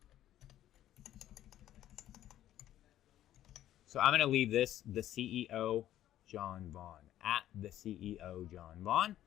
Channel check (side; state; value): right; quieter; 12.5 dB